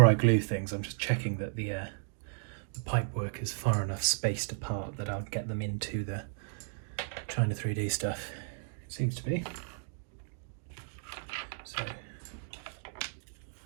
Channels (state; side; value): silent; left; digital silence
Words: I glue things, I'm just checking that the pipework is far enough spaced apart that I'll get them into the China 3D stuff. It seems to be. So